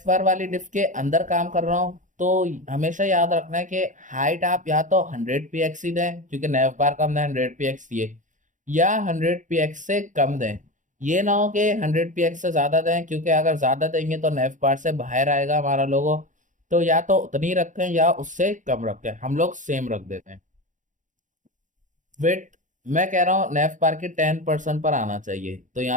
बार वाली डिफ के अंदर काम कर रहा हूँ तो हमेशा याद रखना है कि हाइट आप या तो 100 px ही दें क्योंकि नेफ बार का हमने 100 px दिए, या 100 px से कम दें। ये ना हो कि 100 px से ज्यादा दें क्योंकि अगर ज्यादा देंगे तो नेफ बार से बाहर आएगा हमारा लोगो। तो या तो उतनी रखें या उससे कम रखें, हम लोग सेम रख देते हैं। वेट मैं कह रहा हूँ नेफ बार के 10% पर आना चाहिए तो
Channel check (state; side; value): late; left; 0.37 ms